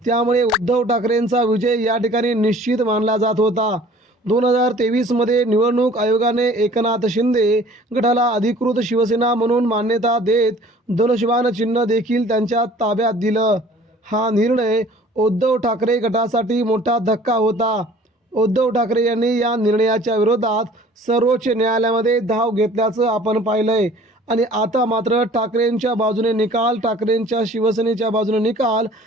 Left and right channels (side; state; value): both; normal; correlation 0.50